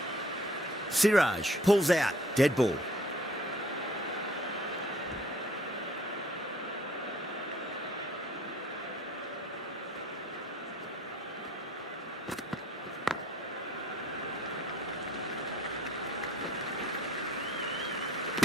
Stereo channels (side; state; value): both; normal; correlation 0.55